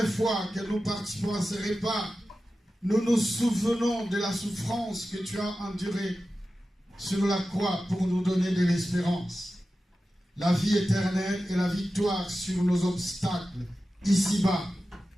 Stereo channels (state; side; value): normal; both; correlation 0.93